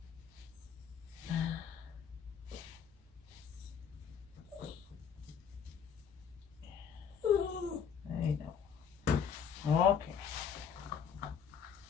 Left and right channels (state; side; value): quieter; right; 7.2 dB